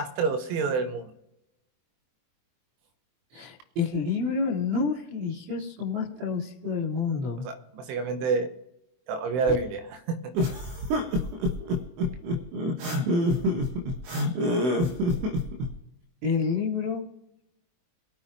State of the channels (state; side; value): late; left; 23 ms